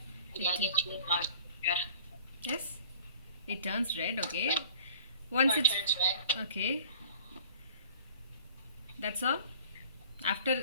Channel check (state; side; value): inverted; both; correlation -0.47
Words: Yeah, I get you. Red. Yes, it turns red. Okay. Once Or it's turns red. okay. That's all.